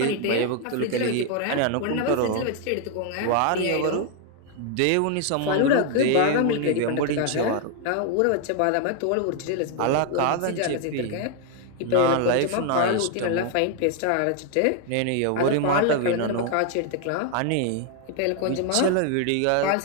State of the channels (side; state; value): both; different; correlation 0.00